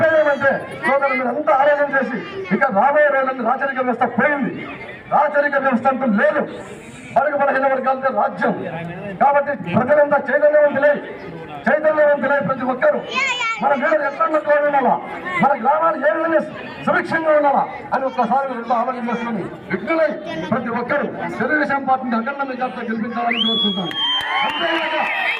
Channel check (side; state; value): both; identical; correlation 1.00